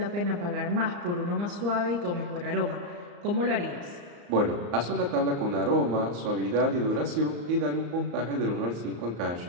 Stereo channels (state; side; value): late; left; 34 ms